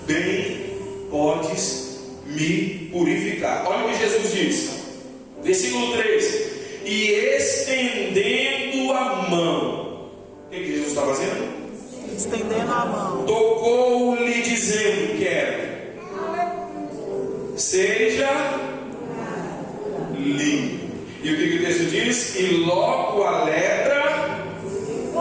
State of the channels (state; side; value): identical; both; correlation 1.00